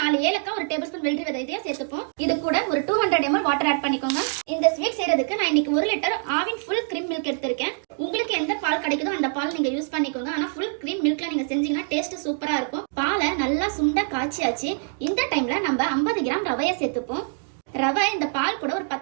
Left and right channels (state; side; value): silent; left; 59 dB below the other